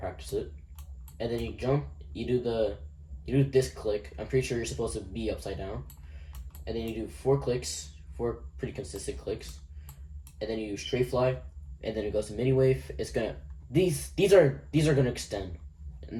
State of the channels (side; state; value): both; identical; correlation 1.00